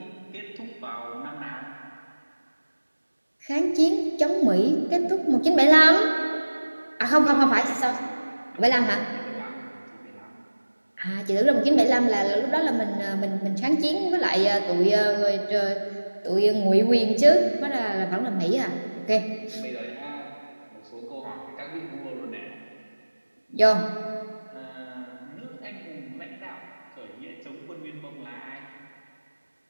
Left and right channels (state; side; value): inverted; both; correlation -1.00